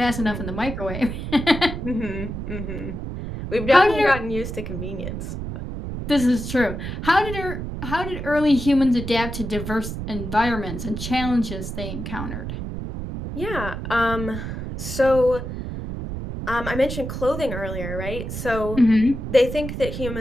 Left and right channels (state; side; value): noise; right; rumble, 6 dB below the sound